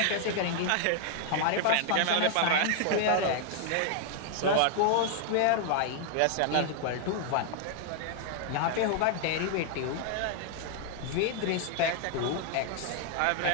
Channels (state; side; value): different; both; correlation 0.00